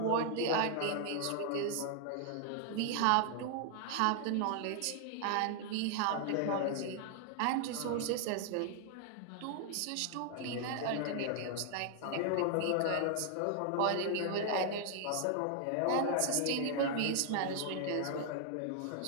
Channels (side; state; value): both; different; correlation 0.00